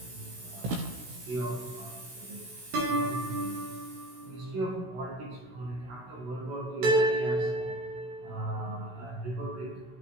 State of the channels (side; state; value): left; late; 16 ms